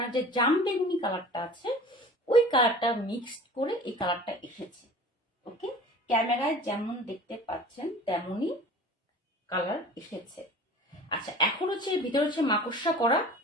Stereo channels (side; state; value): both; normal; correlation 0.42